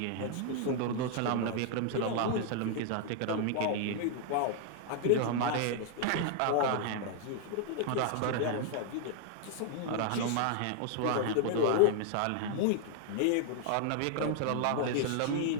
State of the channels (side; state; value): both; different; correlation 0.00